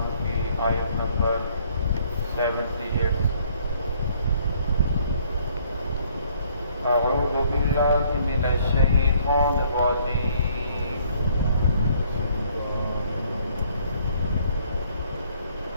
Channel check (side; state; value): both; inverted; correlation -0.63